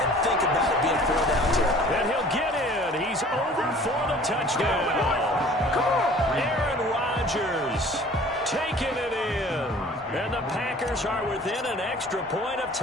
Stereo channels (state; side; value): normal; both; correlation 0.49